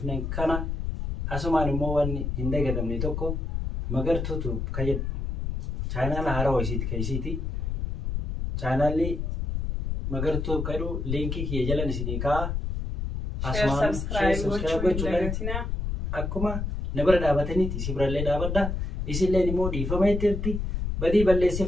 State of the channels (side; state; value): left; noise; rumble, 2 dB below the sound